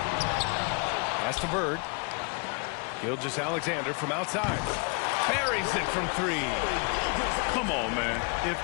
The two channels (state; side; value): quieter; right; 34.3 dB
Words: Pass to Bird. Gilgeous-Alexander from outside. Buries it from three. Come on, man. If